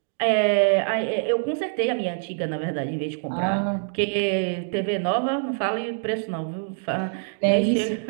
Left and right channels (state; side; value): silent; left; digital silence